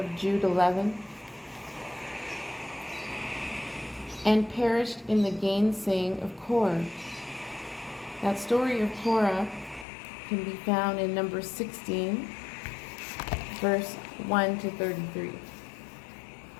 Jude 11. And perished in the gainsaying of Korah. That story of Korah can be found in Numbers 16, verse 1 to 33.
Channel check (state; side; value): drops out; right; at 9.9 s